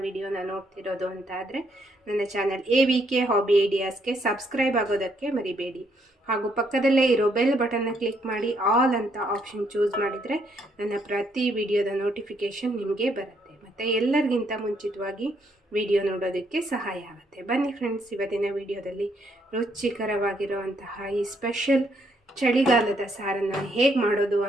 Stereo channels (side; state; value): both; normal; correlation 0.72